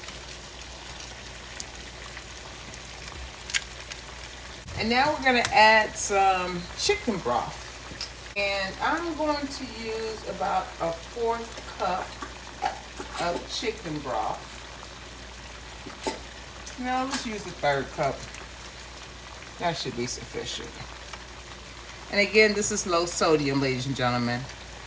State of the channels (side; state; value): both; identical; correlation 1.00